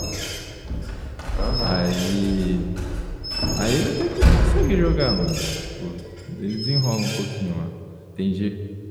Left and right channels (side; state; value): both; identical; correlation 1.00